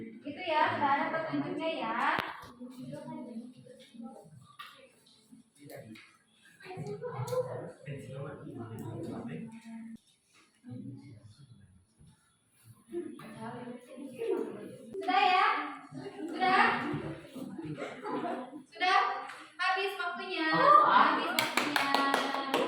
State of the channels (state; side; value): identical; both; correlation 1.00